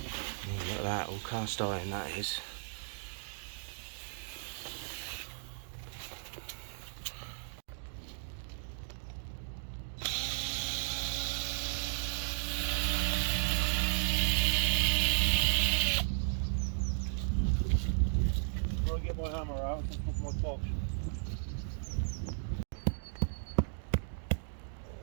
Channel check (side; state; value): left; silent; digital silence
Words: Look at that, all cast iron that is. I'll get my hammer out and put my box.